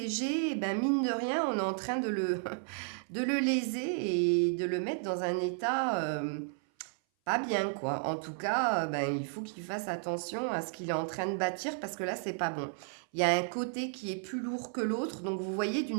eh ben mine de rien, on est en train de de le léser et de le mettre dans un état pas bien, quoi. En tout cas, ben, il faut qu'il fasse attention à ce qu'il est en train de bâtir parce que là, c'est pas bon. Il y a un côté qui est plus lourd que l'autre. Donc, vous voyez,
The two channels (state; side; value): silent; left; 56 dB below the other